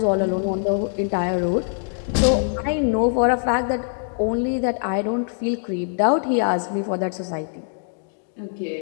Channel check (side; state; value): right; silent; digital silence